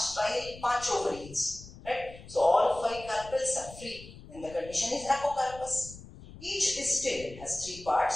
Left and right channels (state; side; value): noise; left; rumble, 17 dB below the sound